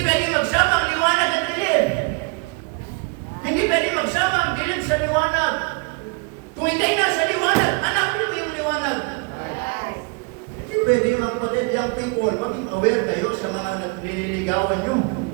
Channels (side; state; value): left; quieter; 31.7 dB